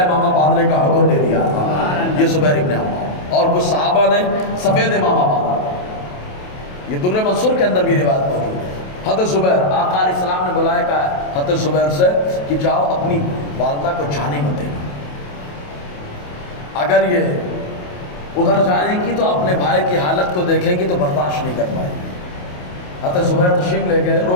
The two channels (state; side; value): late; right; 28 ms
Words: امامہ باندھنے کا حکم دے دیا تھا، یہ زبیر ابن عوام، اور کچھ صحابہ نے سفید امامہ باندھا، یہ در منصور کے اندر بھی روایت موجود ہے۔ حضرت زبیر آقا علیہ السلام نے بلایا کہا حضرت زبیر سے کہ جاؤ اپنی والدہ کو جانے مت دینا، اگر یہ ادھر جائیں گی تو اپنے بھائی کی حالت کو دیکھیں گی تو برداشت نہیں کر پائے گی۔ حضرت زبیر تشریف لے گئے،